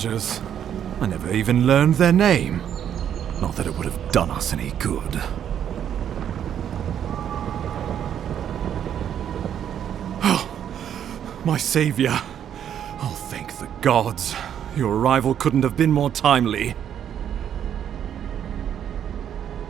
I never even learned their name. Not that it would have done us any good. Oh, my savior. Oh, thank the gods. Your arrival couldn't have been more timely.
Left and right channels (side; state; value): left; quieter; 9.4 dB